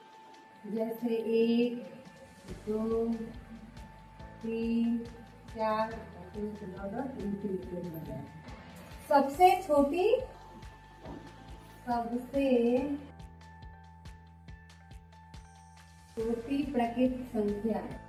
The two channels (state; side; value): identical; both; correlation 1.00